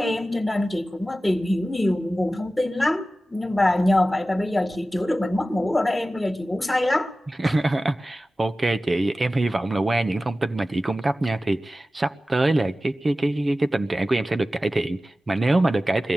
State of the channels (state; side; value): normal; both; correlation 0.95